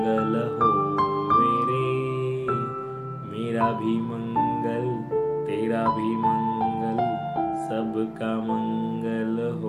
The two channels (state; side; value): identical; both; correlation 1.00